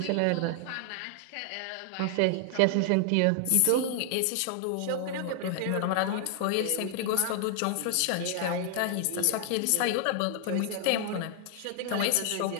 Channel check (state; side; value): different; both; correlation 0.00